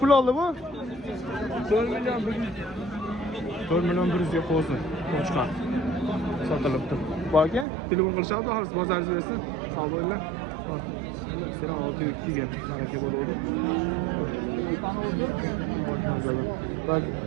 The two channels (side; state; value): left; drops out; at 7.7 s